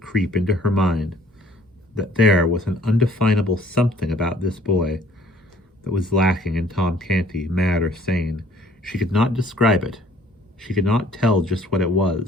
into her mind that there was an undefinable something about this boy that was lacking in Tom Canty, mad or sane. She could not describe it. She could not tell just what it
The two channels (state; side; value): normal; both; correlation 0.58